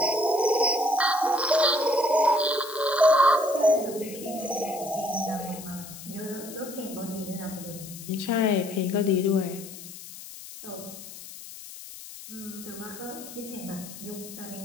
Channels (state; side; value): noise; left; hiss, 14 dB below the sound